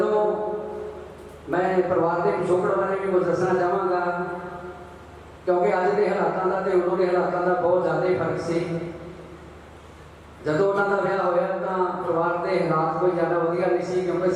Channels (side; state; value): both; identical; correlation 1.00